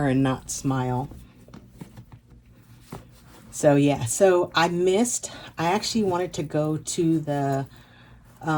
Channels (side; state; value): both; identical; correlation 1.00